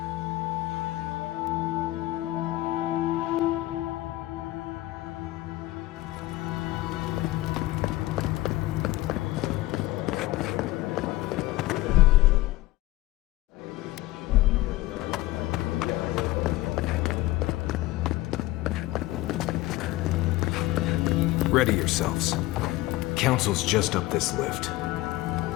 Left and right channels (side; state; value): right; quieter; 17.8 dB